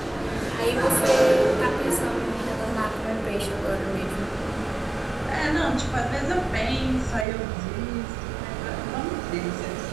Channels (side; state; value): left; drops out; at 7.2 s